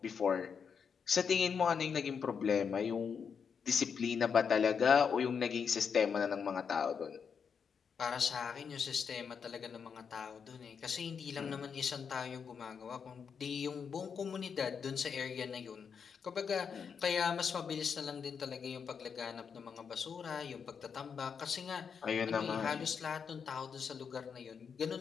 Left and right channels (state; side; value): quieter; right; 6.5 dB